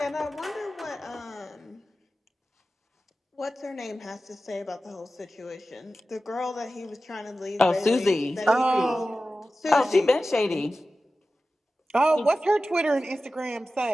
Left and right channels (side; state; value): both; normal; correlation 0.94